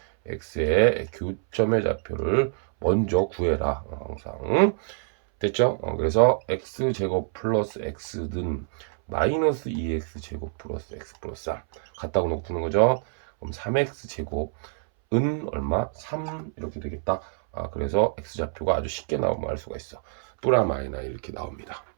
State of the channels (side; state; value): left; silent; 61 dB below the other